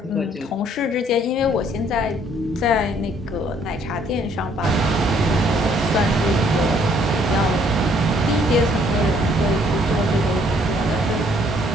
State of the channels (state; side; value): normal; both; correlation 0.64